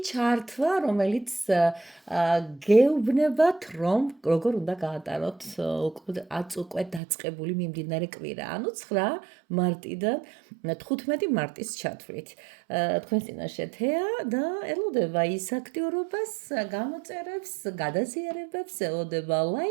ჩართვა, რომელიც გეუბნებათ, რომ როგორ უნდა გაატაროთ უკვე დაწყებული მიმდინარე კვირა, ანუ 9 მარტიდან 15 მარტის ჩათვლით. თქვენს წინაშე თეა და ელოდება ის აქტიურობას, გამოწერებს, გადაზიარებებს, ელოდება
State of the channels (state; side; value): drops out; left; at 7.0 s